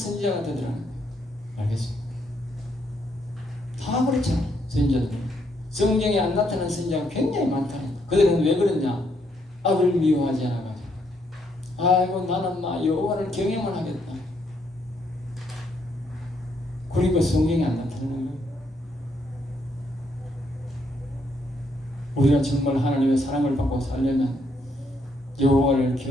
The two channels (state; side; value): normal; both; correlation 0.74